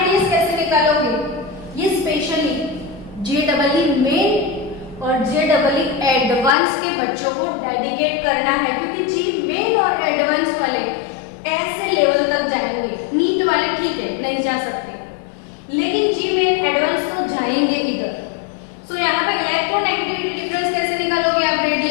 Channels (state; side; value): drops out; right; at 6.6 s